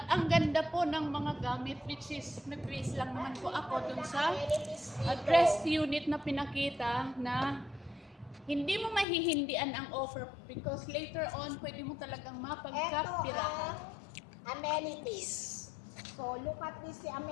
ang ganda po ng mga gamit, which is nag-base lang naman po ako dun sa address unit na pinakita na hindi mo mahihindian ang offer because later on, pwede mo talagang Ito mapagkapirahan. ang amenities. So, look at this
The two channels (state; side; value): drops out; right; at 9.1 s